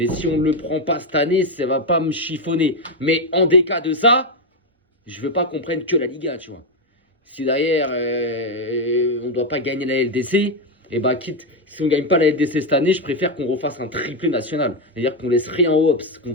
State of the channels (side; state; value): both; normal; correlation 0.05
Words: si on ne le prend pas cette année, ça va pas me chiffonner. Mais en des cas de ça, je veux pas qu'on prenne que la Liga, tu vois. Si derrière, on ne doit pas gagner la LDC, et bah quitte, si on ne gagne pas la LDC cette année, je préfère qu'on refasse un triplé national. C'est-à-dire qu'on laisse rien au Hops, qu'on